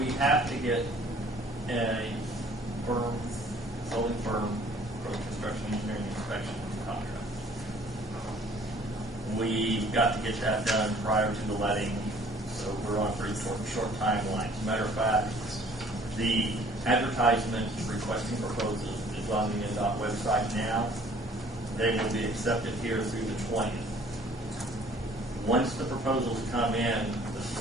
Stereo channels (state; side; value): normal; both; correlation 0.55